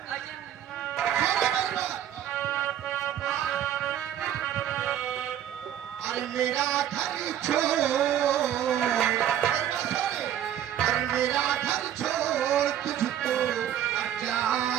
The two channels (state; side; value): quieter; left; 10.7 dB